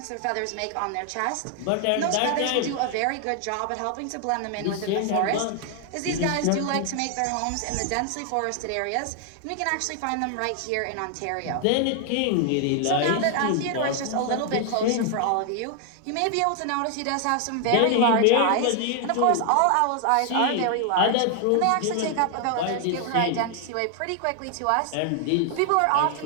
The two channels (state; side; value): different; both; correlation 0.00